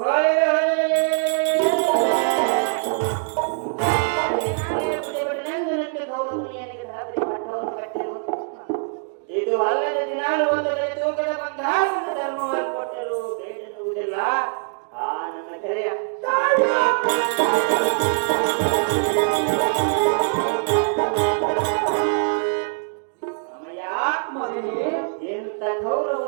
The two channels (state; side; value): silent; left; digital silence